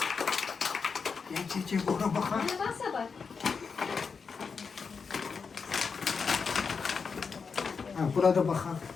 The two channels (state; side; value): quieter; right; 5.4 dB